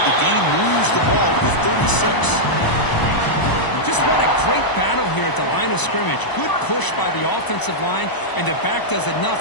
the game moves the ball to the 36. Just what a great battle here at the line of scrimmage. Good push by the offensive line, and the back does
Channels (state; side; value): late; right; 1.0 ms